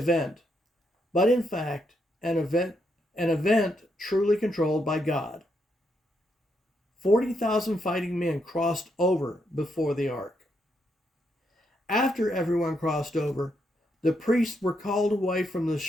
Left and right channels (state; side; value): normal; both; correlation 0.79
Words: but in fact an event truly controlled by God. 40,000 fighting men crossed over before the ark. After everyone crossed over, the priests were called away from the